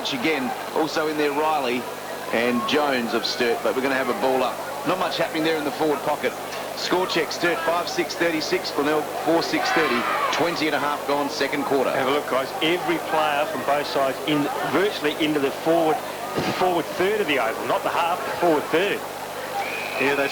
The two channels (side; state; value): both; identical; correlation 1.00